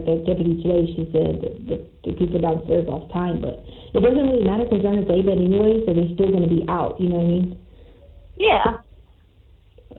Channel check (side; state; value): both; identical; correlation 1.00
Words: the deputy today, she said that the people downstairs lost time, but it doesn't really matter because they're on a day bed anyway, so they're still going to be out. You know what I mean? Yeah.